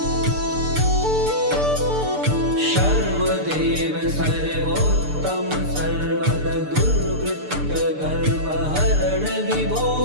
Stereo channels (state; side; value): late; left; 6.8 ms